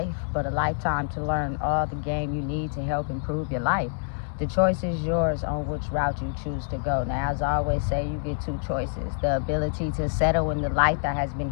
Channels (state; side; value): silent; right; digital silence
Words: but a lifetime to learn all the game you need to help improve your life. The choice is yours on which route you choose to go. Now, as I always say, you get two choices. The ability to settle in the life that has been